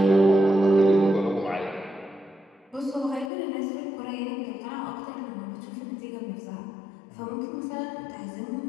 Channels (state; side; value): drops out; right; at 3.3 s